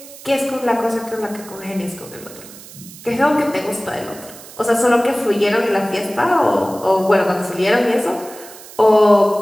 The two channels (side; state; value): right; noise; hiss, 18 dB below the sound